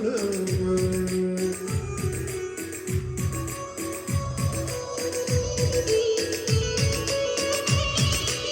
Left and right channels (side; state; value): both; identical; correlation 1.00